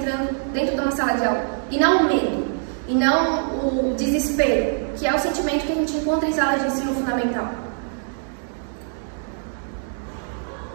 dentro de uma sala de aula. E não o medo. E não o desespero, que é o sentimento que a gente encontra em salas de ensino fundamental.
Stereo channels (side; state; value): left; silent; digital silence